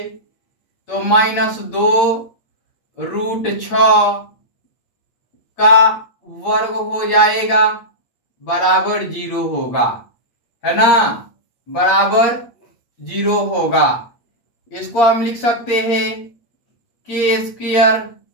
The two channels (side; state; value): right; late; 8.6 ms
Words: तो माइनस 2 रूट 6 का वर्ग हो जाएगा, बराबर 0 होगा, है ना, बराबर 0 होगा। इसको हम लिख सकते हैं k स्क्वायर